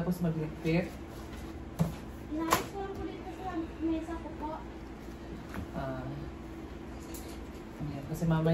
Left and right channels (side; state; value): both; identical; correlation 1.00